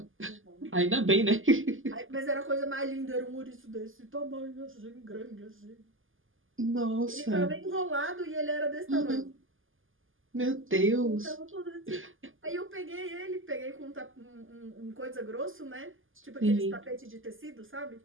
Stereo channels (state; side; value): late; left; 0.58 ms